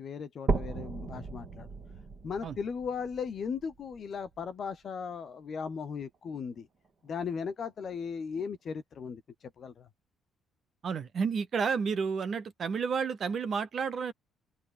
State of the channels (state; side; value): normal; both; correlation 0.76